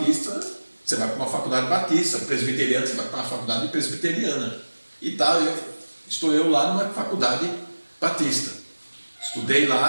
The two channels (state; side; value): inverted; both; correlation -1.00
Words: você vai para uma faculdade batista, presbiteriana, você vai para uma faculdade presbiteriana. E tal, estou eu lá numa faculdade batista. Estudei